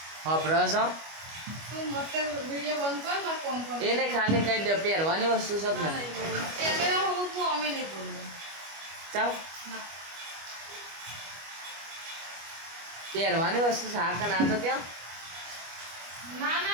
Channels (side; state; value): left; late; 25 ms